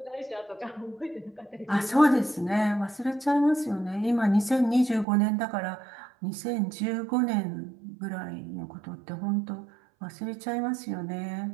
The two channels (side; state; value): left; drops out; at 5.1 s